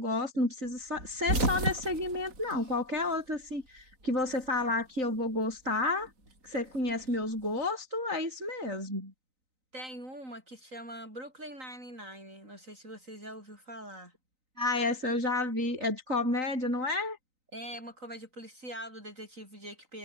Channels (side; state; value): left; late; 3.9 ms